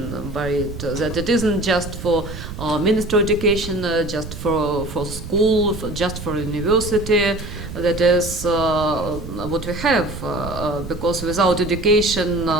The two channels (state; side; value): noise; right; rumble, 10 dB below the sound